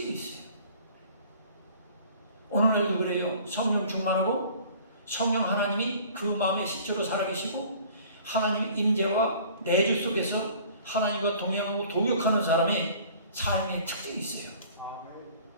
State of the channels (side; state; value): both; inverted; correlation -0.50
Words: 있어요. 오늘날도 그래요. 성령 충만하고 성령 하나님이 그 마음에 실제로 살아계시고 하나님 임재와 내주 속에서 하나님과 동행하고 동역하는 사람의 삶의 특징이 있어요.